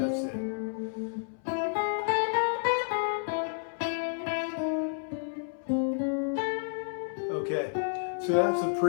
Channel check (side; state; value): right; silent; 57 dB below the other